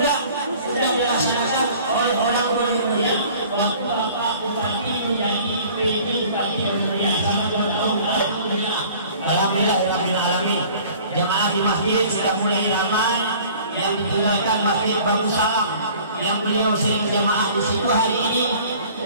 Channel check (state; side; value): inverted; both; correlation -0.49